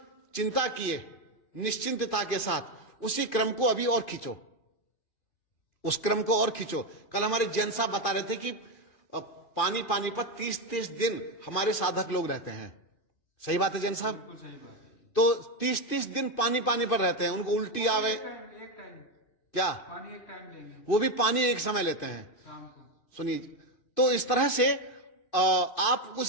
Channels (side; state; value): right; late; 2.5 ms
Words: चिंता किए निश्चिंतता के साथ उसी क्रम को अभी और खींचो, उस क्रम को और खींचो। कल हमारे जैन साहब बता रहे थे कि पानी पर 30-30 दिन हमारे साधक लोग रहते हैं। सही बात है जैन साहब? बिल्कुल सही बात है। तो 30-30 दिन पानी पर रहते हैं, उनको उल्टी आवे एक टाइम क्या, पानी एक टाइम देंगे वो भी पानी एक समय लेते हैं। शाम को। सुनिए, तो इस तरह से आप